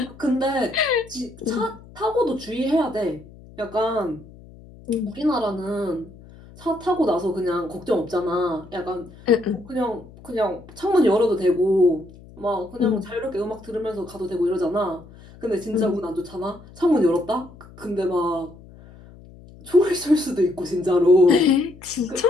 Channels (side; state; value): left; noise; hum, 21 dB below the sound